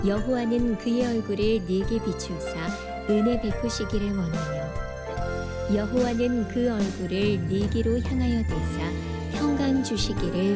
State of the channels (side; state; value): both; identical; correlation 1.00